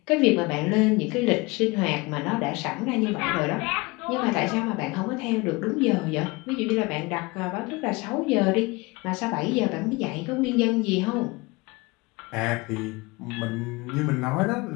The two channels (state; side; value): quieter; right; 24.5 dB